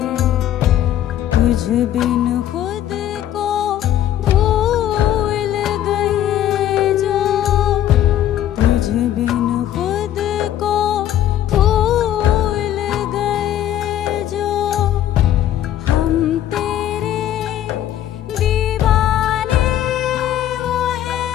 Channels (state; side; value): quieter; right; 11.7 dB